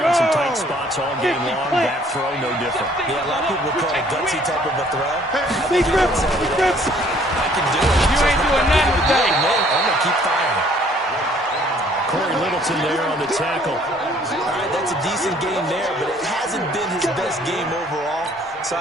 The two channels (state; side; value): normal; both; correlation 0.59